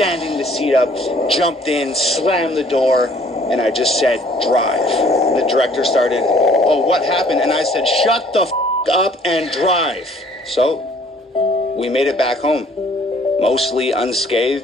the seat up, jumped in, slammed the door, and I just said, drive. And the director started, oh, what happened? And I said, shut the f*** up and drive. So we made it back home, mostly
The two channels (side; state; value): both; normal; correlation 0.58